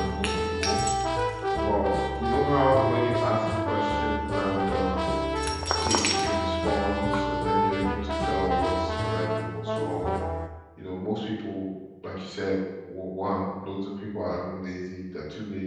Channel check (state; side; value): identical; both; correlation 1.00